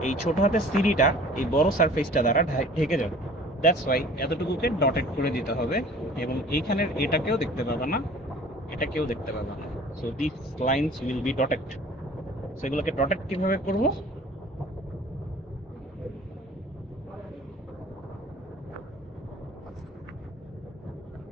এই ছোট হাতের সিঁড়িটা এই বড় সারফেসটা দ্বারা ঢেকে যাবে। দ্যাটস ওয়াই এতটুকুকে ডটেড করে দিতে হবে, এবং এইখানের এটাকেও দেখতে পাবা না, এটাকেও দেখতে পাবা না। So this lines will be dotted. সেগুলোকে ডটেড কিভাবে করবো?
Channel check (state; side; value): normal; both; correlation 0.48